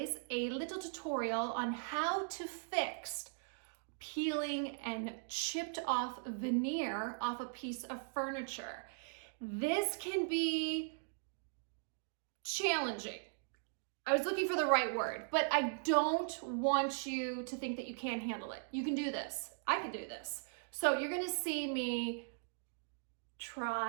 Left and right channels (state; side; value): silent; left; digital silence